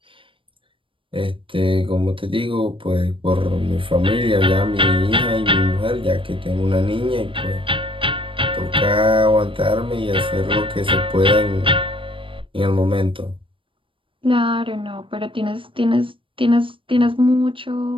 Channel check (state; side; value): late; left; 0.25 ms